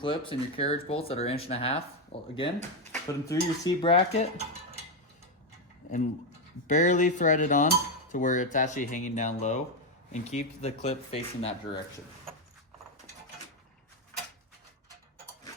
and your carriage bolts that are 1.5 inches. Well, again, put them through your seat bracket and barely thread it on to where it's actually hanging down low, and keep the clip facing that direction.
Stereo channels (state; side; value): normal; both; correlation 0.06